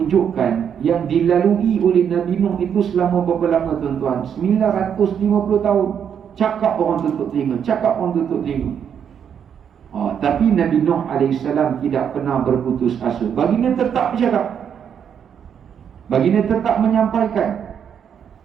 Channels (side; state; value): left; quieter; 8.1 dB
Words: yang dilalui oleh Nabi Nuh itu selama berapa lama tuan-tuan? 950 tahun. Cakap orang tutup telinga, cakap orang tutup telinga. Tapi Nabi Nuh alaihissalam tidak pernah berputus asa. Baginda tetap bercakap, baginda tetap menyampaikan.